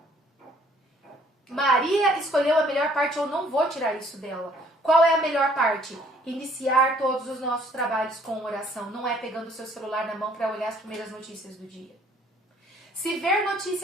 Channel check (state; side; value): normal; both; correlation 0.60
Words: Maria escolheu a melhor parte, eu não vou tirar isso dela. Qual é a melhor parte? Iniciar todos os nossos trabalhos com oração. Não é pegando o seu celular na mão para olhar as primeiras notícias do dia. Se ver